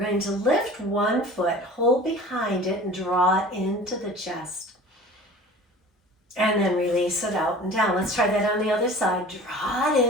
to lift one foot, hold behind it, and draw it into the chest. And then release it out and down. Let's try that on the other side. Draw it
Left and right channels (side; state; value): both; normal; correlation 0.42